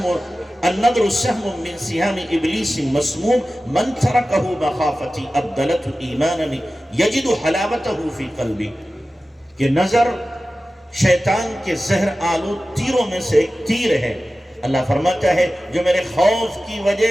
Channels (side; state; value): both; normal; correlation 0.95